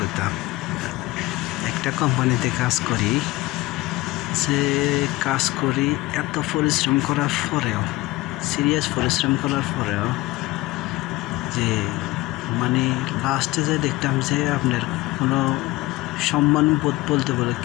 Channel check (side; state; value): right; quieter; 19.6 dB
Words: একটা কোম্পানিতে কাজ করি, এত পরিশ্রম করার পরেও, সিরিয়াস পরিশ্রম করার পরেও যে মানে লাস্টে যে দেখতাম যে আপনার কোনো সম্মান বোধ বলতে বলে